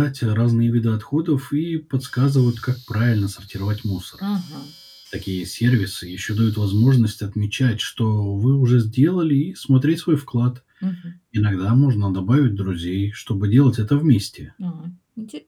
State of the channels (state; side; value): identical; both; correlation 1.00